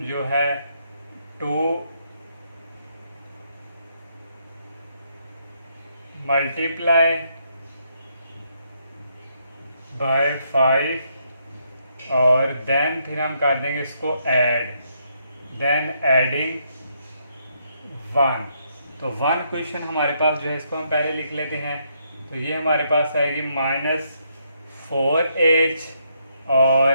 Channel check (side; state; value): both; inverted; correlation -0.75